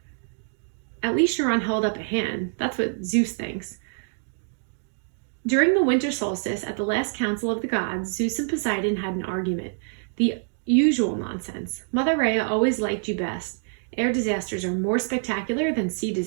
At least Chiron held up a hand. That's what Zeus thinks. During the winter solstice at the last council of the gods, Zeus and Poseidon had an argument. The usual nonsense. Mother Rhea always liked you best. Air disasters are more spectacular than sea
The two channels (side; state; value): left; silent; digital silence